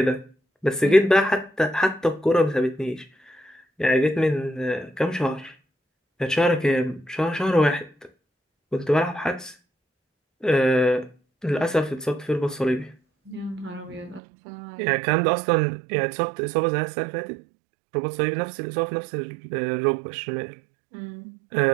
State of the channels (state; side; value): drops out; left; at 14.2 s